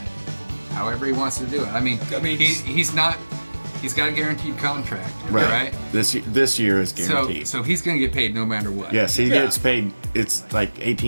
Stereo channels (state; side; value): inverted; both; correlation -1.00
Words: However he wants to do it. I mean, he's not. He's got a guaranteed contract, right? This year is guaranteed. So he's gonna get paid no matter what. Yes, he gets paid. It's like